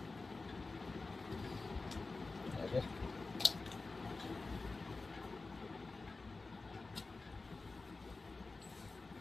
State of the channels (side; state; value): right; quieter; 3.6 dB